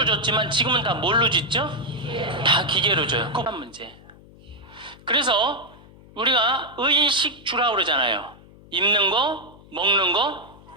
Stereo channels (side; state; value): left; noise; hum, 23 dB below the sound